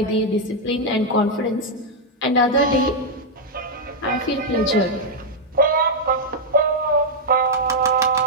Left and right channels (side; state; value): both; normal; correlation -0.03